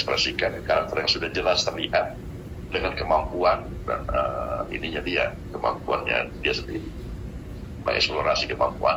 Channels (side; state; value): both; identical; correlation 1.00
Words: karakter yang sudah jelas terlihat dengan kemampuan dan kemampuannya dia sendiri, mengeksplorasi